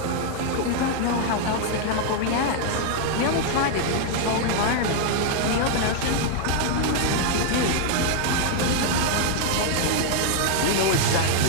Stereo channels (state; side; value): different; both; correlation 0.00